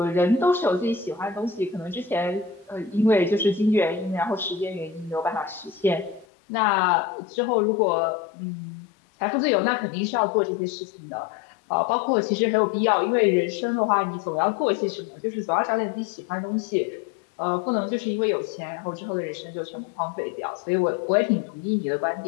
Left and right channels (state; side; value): drops out; right; at 6.2 s